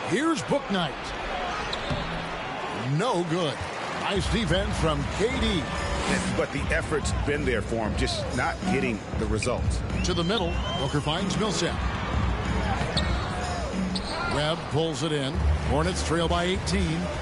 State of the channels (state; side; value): identical; both; correlation 1.00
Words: Here's Bouknight. No good. Nice defense from KD. But the effort's been there for him, just not getting the results. To the middle, Booker finds Millsap. Webb pulls it in. Hornets trail by 18.